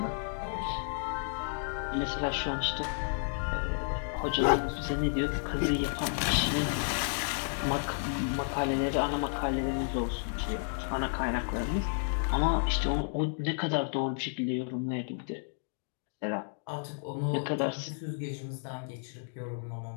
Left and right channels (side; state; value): right; silent; digital silence